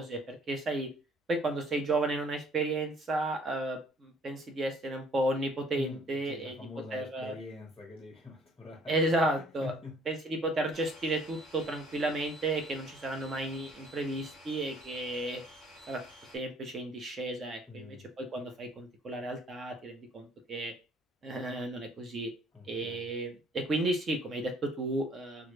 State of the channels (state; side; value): normal; both; correlation 0.58